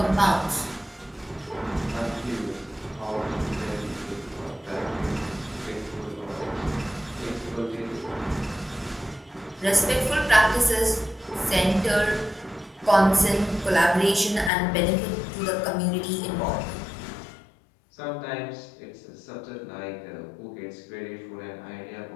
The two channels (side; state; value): right; drops out; at 14.5 s